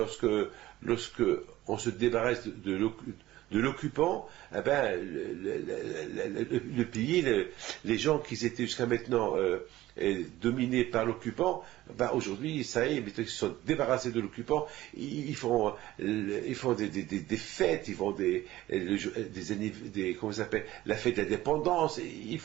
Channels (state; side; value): quieter; left; 15.9 dB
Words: on se débarrasse de l'occupant, eh ben, le pays, les gens qui étaient jusqu'à maintenant dominés par l'occupant, ben aujourd'hui, ça y est, ils se sont débarrassés de l'occupant, ils font des fêtes, ils font comment ça s'appelle, la fête de l'indépendance,